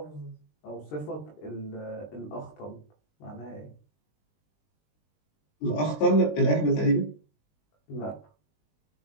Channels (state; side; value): late; right; 20 ms